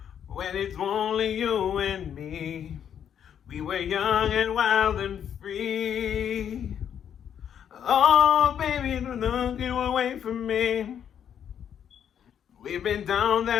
when it's only you and me. We were young and wild and free. Oh, baby, don't look away from me. We've been down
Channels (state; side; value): quieter; right; 8.8 dB